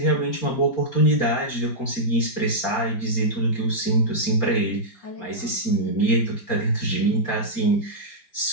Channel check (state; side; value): late; right; 4.3 ms